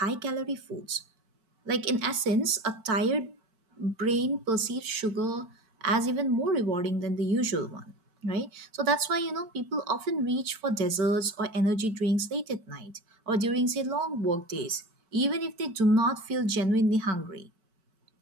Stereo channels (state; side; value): late; left; 4.5 ms